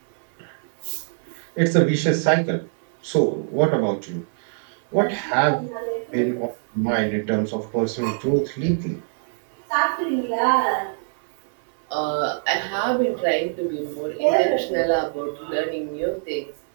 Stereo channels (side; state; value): left; silent; digital silence